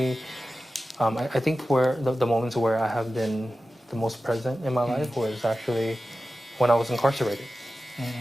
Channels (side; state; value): both; normal; correlation 0.94